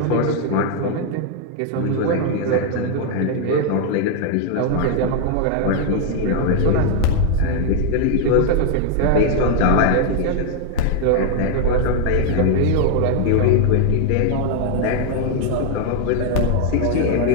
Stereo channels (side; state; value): both; different; correlation 0.00